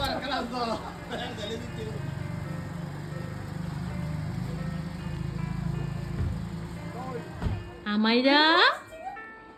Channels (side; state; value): both; identical; correlation 1.00